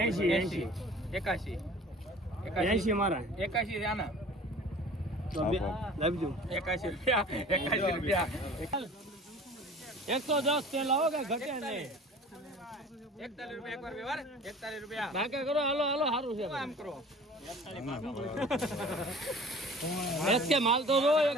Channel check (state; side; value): normal; both; correlation 0.45